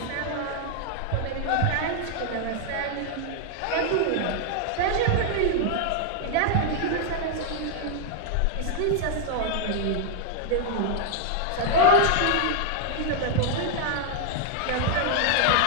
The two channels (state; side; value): different; both; correlation 0.00